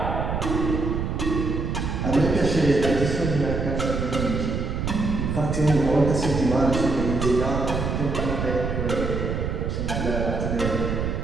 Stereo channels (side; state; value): right; noise; rumble, 1 dB below the sound